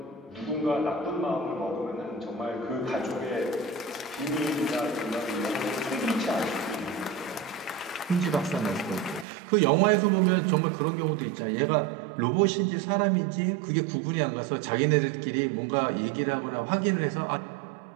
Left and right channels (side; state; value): left; drops out; at 9.2 s